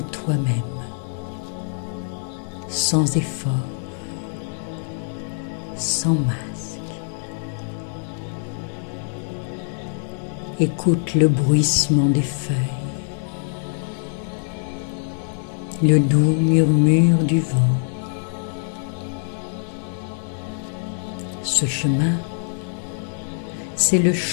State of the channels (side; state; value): right; silent; digital silence